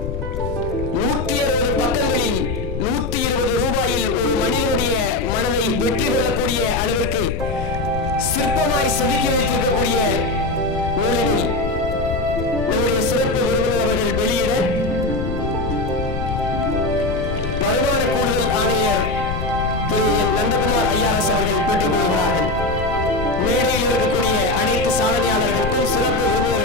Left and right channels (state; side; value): noise; left; rumble, 5 dB below the sound